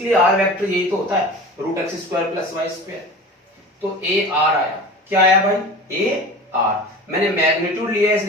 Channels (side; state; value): both; normal; correlation 0.36